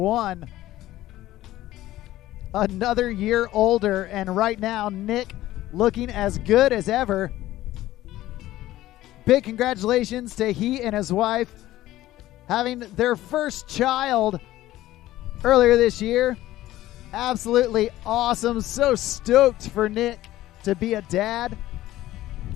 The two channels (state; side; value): quieter; right; 15.2 dB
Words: Another year older, and right now Nick looking as good as ever. Big congratulations to he and his wife having their first child earlier this year. Absolutely awesome. So stoked for Nick to be a dad.